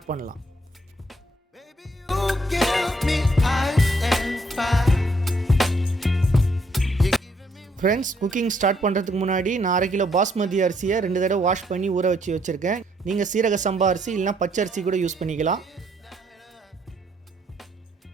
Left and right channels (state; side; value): normal; both; correlation 0.70